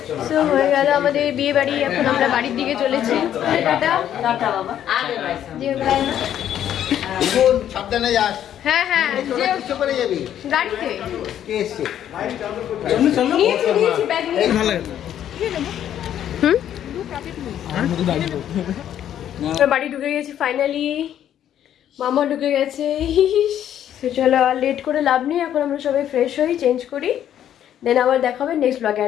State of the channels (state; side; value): quieter; right; 10.6 dB